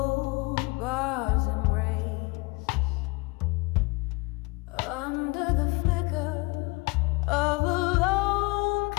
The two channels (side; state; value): right; quieter; 25.9 dB